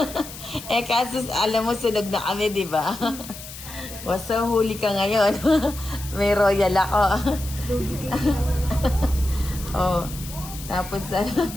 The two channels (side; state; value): left; noise; hiss, 13 dB below the sound